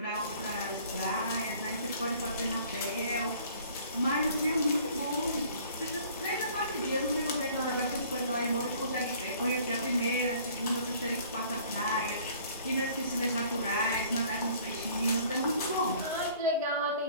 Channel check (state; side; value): inverted; both; correlation -0.54